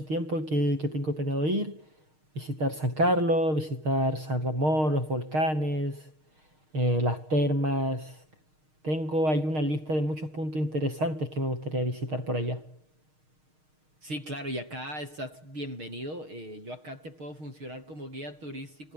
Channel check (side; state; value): left; late; 6.5 ms